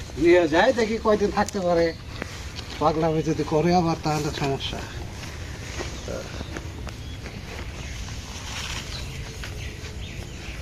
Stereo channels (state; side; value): identical; both; correlation 1.00